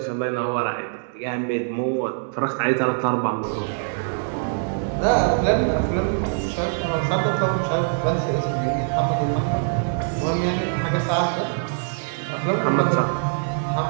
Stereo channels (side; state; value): left; silent; digital silence